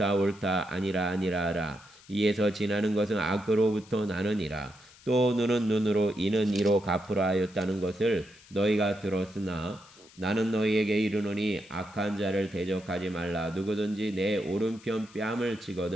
옳다 아니라 아니라 하라. 이에서 지나는 것은 악으로부터 나느니라. 또 눈은 눈으로 이는 이로 갚으라 하였다는 것을 너희가 들었으나 나는 너희에게 이르노니 악한 자를 대적하지 말라. 누구든지 내 오른편 뺨을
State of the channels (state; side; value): noise; left; hiss, 24 dB below the sound